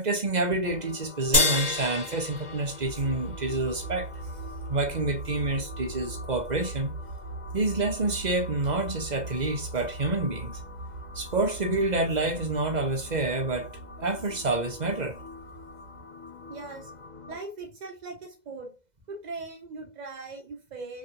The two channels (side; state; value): left; late; 2.0 ms